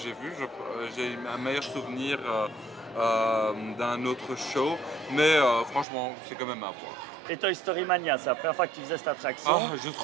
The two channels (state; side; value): drops out; left; at 5.9 s